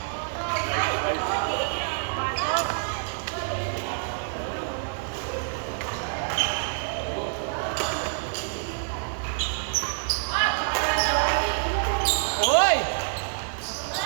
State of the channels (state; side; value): silent; left; digital silence